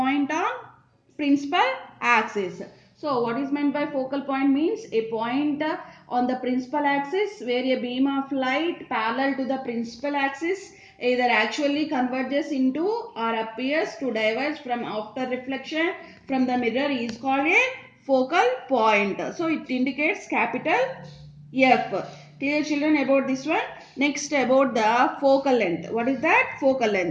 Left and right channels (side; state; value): both; identical; correlation 1.00